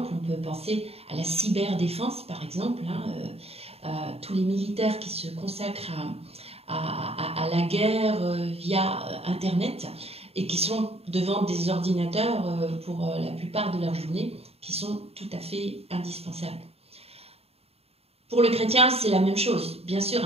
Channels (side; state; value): left; late; 0.29 ms